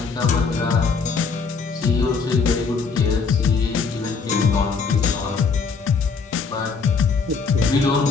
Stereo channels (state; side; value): quieter; right; 5.0 dB